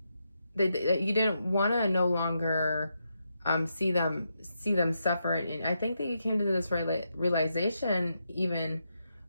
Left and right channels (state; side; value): inverted; both; correlation -0.83